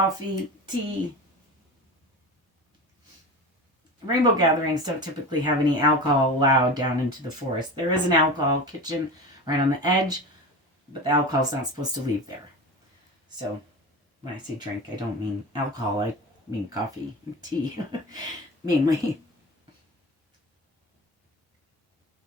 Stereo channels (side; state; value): both; normal; correlation 0.29